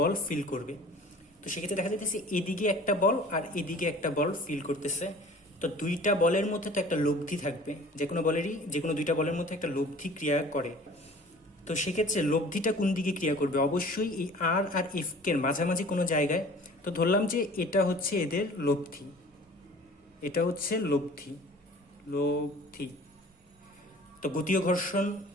ফিল করবে। তো সেক্ষেত্রে দেখা যাইতেছে এদিকে একটা বল আর এদিকে একটা বল ফিল করতেছে। তো দুইটা বলের মধ্যে তো একটা লব্ধি থাকবে, যে কোনো দুইটা বলের মধ্যে একটা লব্ধি ক্রিয়া করে। তো সেক্ষেত্রে লব্ধিটা কোন দিকে ক্রিয়া করবে? অবশ্যই এই আর এফ এর মাঝামাঝি কোনো জায়গায়। তো ধরলাম যে এটা হচ্ছে এদের লব্ধি, এটা হচ্ছে লব্ধি। তো গতীয় ঘর্ষণ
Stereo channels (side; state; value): both; normal; correlation 0.46